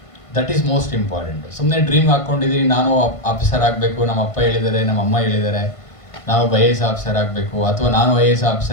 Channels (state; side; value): late; right; 1.5 ms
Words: That is most important. ಸುಮ್ಮನೆ dream ಹಾಕ್ಕೊಂಡಿದ್ದೀವಿ, ನಾನು ಆಫೀಸರ್ ಆಗಬೇಕು, ನಮ್ಮ ಅಪ್ಪ ಹೇಳಿದ್ದಾರೆ, ನಮ್ಮ ಅಮ್ಮ ಹೇಳಿದ್ದಾರೆ, ನಾವು IAS ಆಫೀಸರ್ ಆಗಬೇಕು, ಅಥವಾ ನಾನು IAS